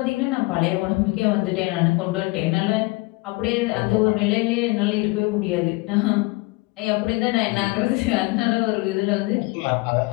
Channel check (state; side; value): quieter; right; 24.2 dB